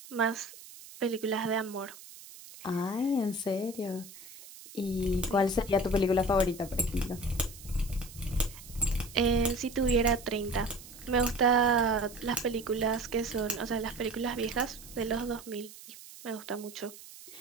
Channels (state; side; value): noise; right; hiss, 17 dB below the sound